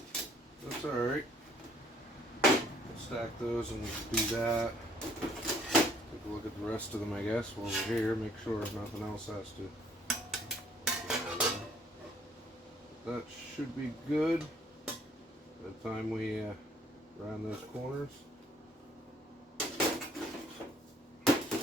alright. We'll stack those and do that. Take a look at the rest of them, I guess, while we're here. Make sure nothing else has to. That should be good by the time we round those corners.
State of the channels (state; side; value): normal; both; correlation 0.61